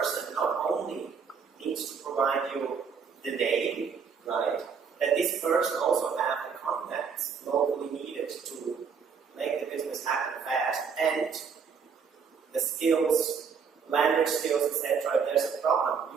not only needs to provide you the name, right? That this person also have the contacts locally needed to make the business happen fast, and the skills, language skills, etc. If there's a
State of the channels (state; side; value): quieter; left; 6.1 dB